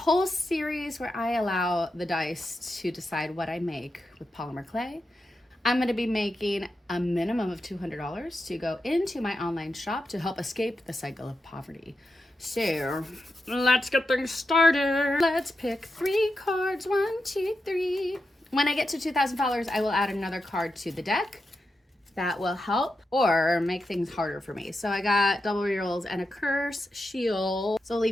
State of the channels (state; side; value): normal; both; correlation 0.87